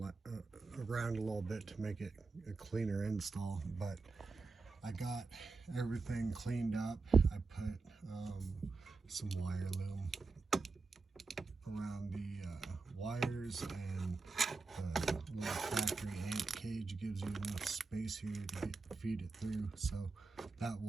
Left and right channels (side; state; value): left; quieter; 4.0 dB